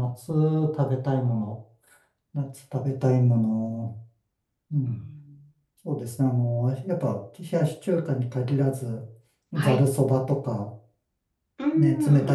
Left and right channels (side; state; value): both; identical; correlation 1.00